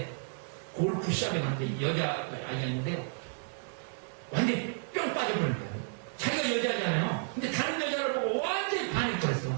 골프 시합에 갔는데 여자 아이가 있는데요. 완전히 뿅 빠져버린 거예요. 자기가 여자잖아요. 근데 다른 여자를 보고 완전히 반했더랬어.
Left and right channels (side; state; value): left; silent; 56 dB below the other